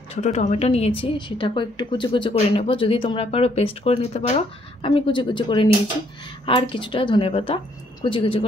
ছোট টমেটো নিয়েছি, সেটাকেও একটু কুচি কুচি করে নেব। যদি তোমরা পারো পেস্ট করে নিতে পারো, আমি কুচি কুচি করে নিয়েছি। আর কিছুটা ধনেপাতা কুচি কুচি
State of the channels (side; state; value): both; normal; correlation 0.68